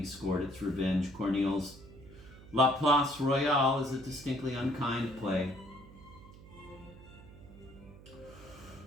scored its revenge. Corneille's La Place Royale is a distinctly unkind play.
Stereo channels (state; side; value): noise; right; hum, 19 dB below the sound